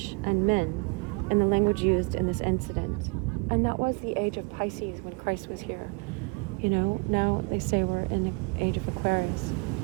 and men in the language used in this incident. And that was the age of Pisces when Christ was here. Now they say we're in the age of Aquarius.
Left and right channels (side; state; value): left; quieter; 31.4 dB